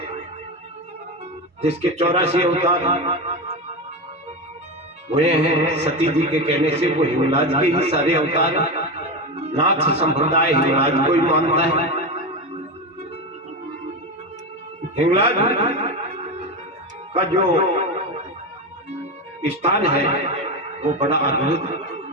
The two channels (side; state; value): both; normal; correlation 0.18